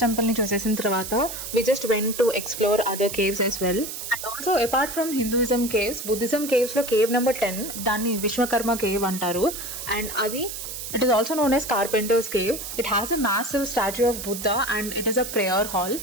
టెంపుల్ని చూసేసిన తర్వాత we just went to explore other caves as well. And also apart from Hinduism caves, Buddhism కేవ్స్లో cave number 10 దాన్ని Vishwakarma cave అంటారు. అండ్ అది it is also known as Carpenter's Cave. It has a massive statue of Buddha and it is a prayer hall.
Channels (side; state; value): right; noise; hiss, 8 dB below the sound